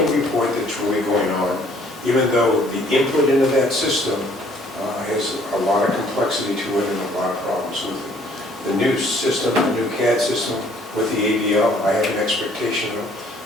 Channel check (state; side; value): normal; both; correlation 0.60